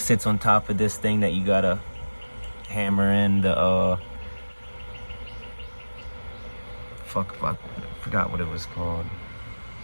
on top of this thing that you gotta hammer in the I forgot what it was called.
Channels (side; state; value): both; inverted; correlation -1.00